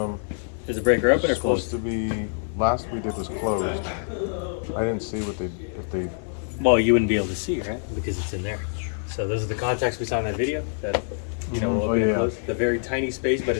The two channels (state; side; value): silent; right; 61 dB below the other